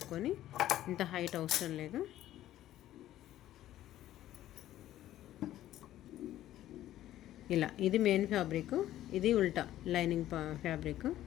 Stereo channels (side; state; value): right; quieter; 13.3 dB